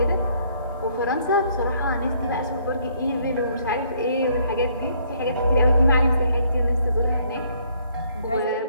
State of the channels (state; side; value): inverted; both; correlation -0.65